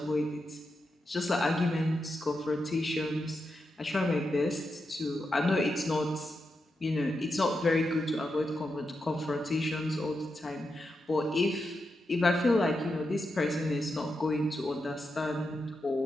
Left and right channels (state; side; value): normal; both; correlation 0.87